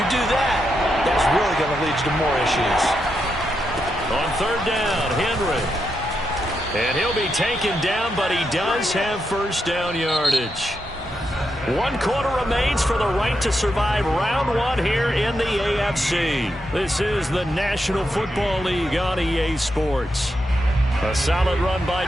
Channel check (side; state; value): both; normal; correlation 0.84